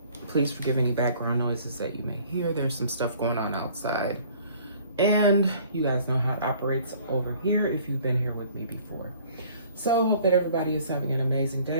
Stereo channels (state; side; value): inverted; both; correlation -0.54